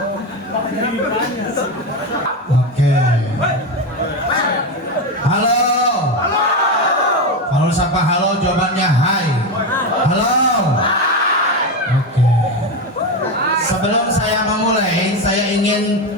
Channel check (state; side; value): normal; both; correlation 0.15